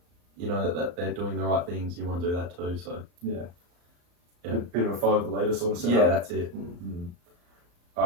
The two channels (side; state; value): left; late; 34 ms